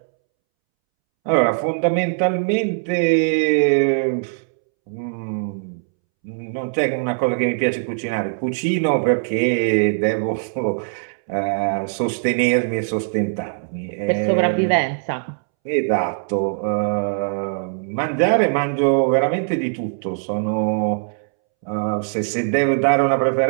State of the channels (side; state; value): left; silent; 65 dB below the other